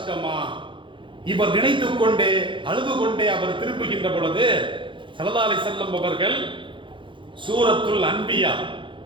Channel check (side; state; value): left; late; 0.24 ms